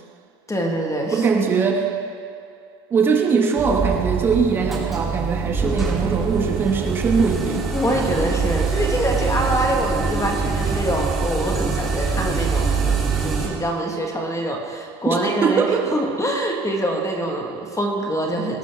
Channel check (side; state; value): left; quieter; 3.5 dB